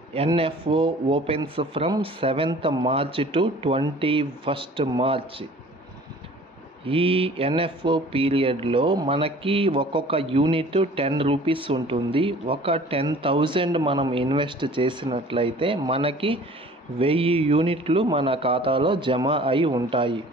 NFO opens from 7th March to 21st March. ఈ NFO పీరియడ్లో మనకి ఒక్కొక్క unit 10 rupees ఉంటుంది. ఒక 10,000 మనం ఇన్వెస్ట్ చేసినట్లయితే మనకి 1000 యూనిట్లు మన ఖాతాలో జమ అయి ఉంటాయి.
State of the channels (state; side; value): normal; both; correlation 0.48